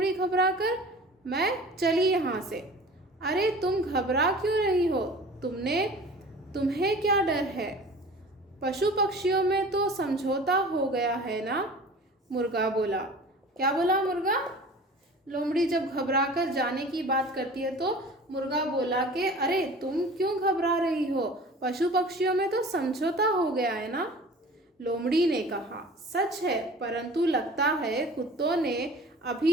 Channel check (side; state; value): both; normal; correlation 0.42